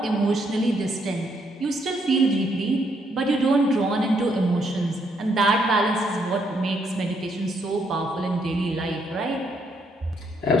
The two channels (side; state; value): both; normal; correlation 0.73